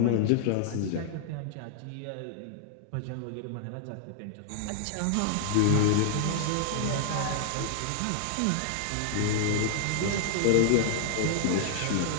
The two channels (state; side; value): different; both; correlation -0.01